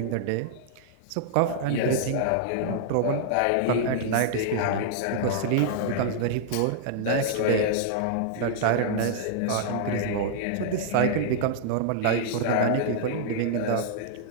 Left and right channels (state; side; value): different; both; correlation -0.01